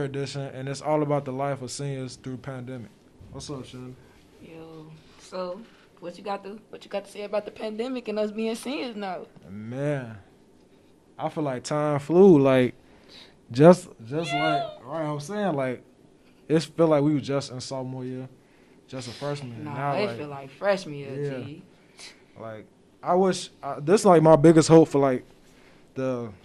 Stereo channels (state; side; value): identical; both; correlation 1.00